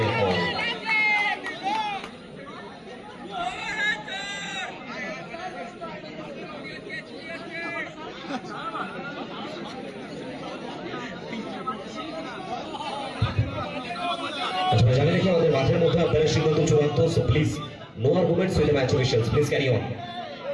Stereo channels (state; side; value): identical; both; correlation 1.00